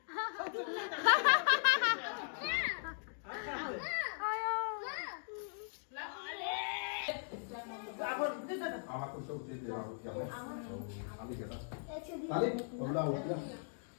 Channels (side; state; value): right; silent; digital silence